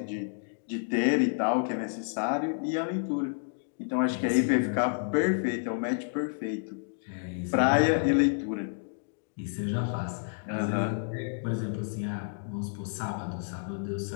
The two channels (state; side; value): silent; right; digital silence